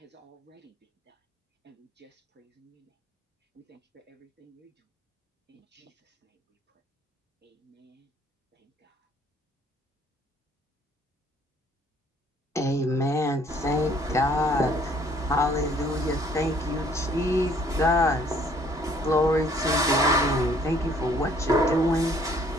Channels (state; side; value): normal; both; correlation 0.60